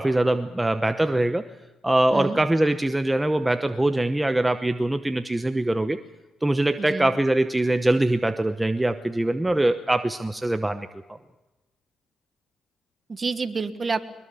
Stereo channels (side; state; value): both; normal; correlation 0.98